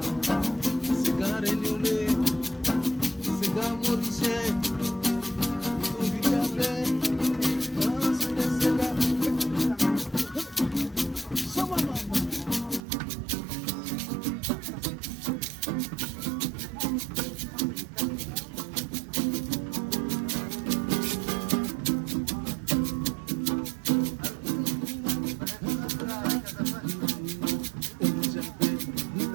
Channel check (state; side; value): drops out; left; at 12.8 s